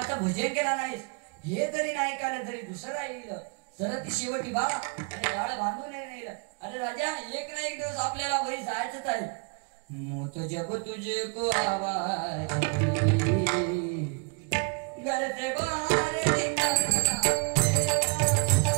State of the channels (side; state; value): left; quieter; 34.5 dB